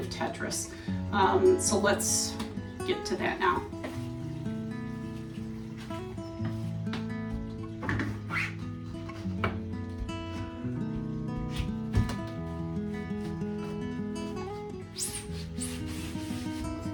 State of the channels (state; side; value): identical; both; correlation 1.00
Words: Tetris. So let's get to that now.